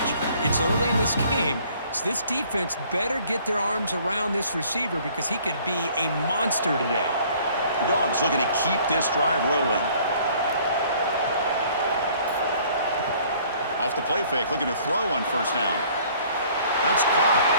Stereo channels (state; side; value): inverted; both; correlation -0.57